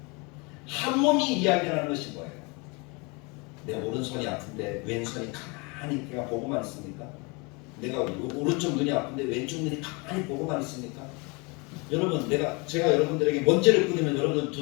한 몸이 이야기하는 것이 뭐예요? 내 오른손이 아픈데 왼손이 가만히 그냥 보고만 있습니까? 내가 오른쪽 눈이 아픈데 왼쪽 눈이 가만히 보고만 있습니까? 여러분, 제가 여러분들에게 먼지를 뿌리면 여러분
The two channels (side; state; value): right; quieter; 29.0 dB